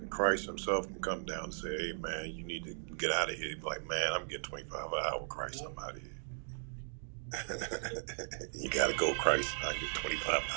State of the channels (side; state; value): left; silent; digital silence